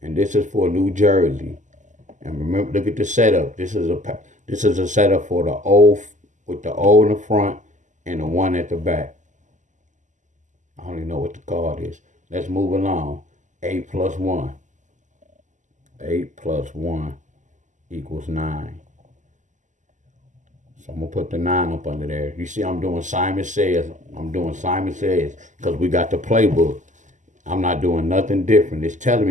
And this is for New Jersey. And remember, look at the setup. This is a setup for the O, with the O in the front and the 1 at the back. I don't even know what the card is. Let's move along. 8 plus 1. 8 plus 1 equals 9. So I'm going to put the 9 up under there. You see I'm doing Simon Says. I'm doing Simon Says because we got the playbook. I'm not doing nothing different. It's telling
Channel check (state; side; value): late; left; 0.36 ms